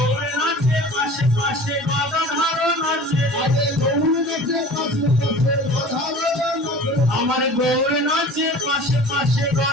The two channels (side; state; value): both; normal; correlation 0.41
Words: নাচে পাশে পাশে গদাধর নাচে, আরে গৌর নাচে পাশে পাশে গদাধর নাচে, আমার গৌর নাচে পাশে পাশে